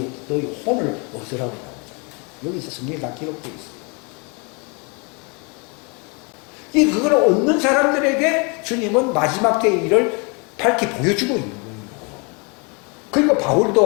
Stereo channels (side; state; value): right; quieter; 32.4 dB